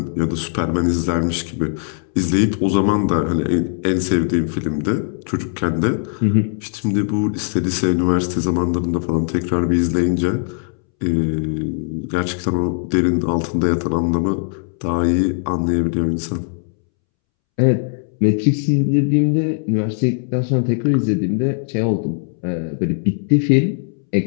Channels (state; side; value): silent; right; 66 dB below the other